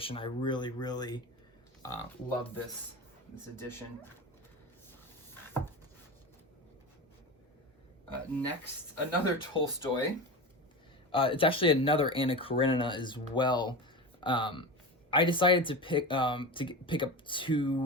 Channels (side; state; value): both; normal; correlation 0.26